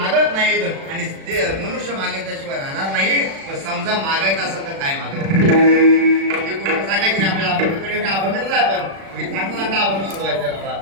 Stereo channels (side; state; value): left; late; 36 ms